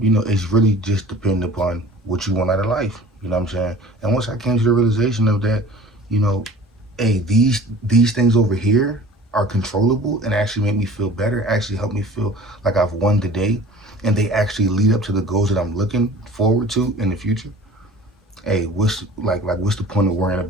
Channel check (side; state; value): both; normal; correlation 0.45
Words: really just dependent upon what you want out of life. You know what I'm saying? And once I came to the realization of that, you know, hey, these things over here are controllable and actually make me feel better, actually help me feel like I've won the day, and they actually lead up to the goals that I'm looking forward to in the future. Hey, what's the point of worrying